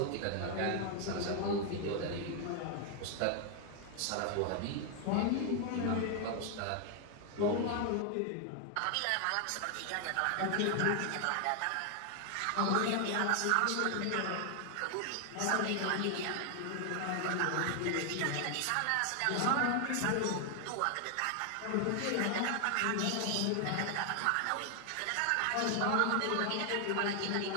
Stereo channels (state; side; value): different; both; correlation 0.00